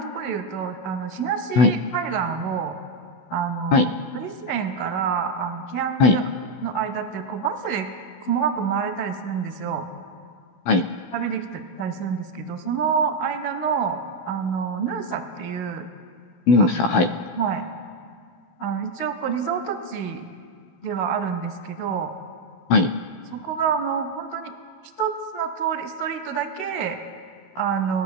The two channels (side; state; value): right; late; 16 ms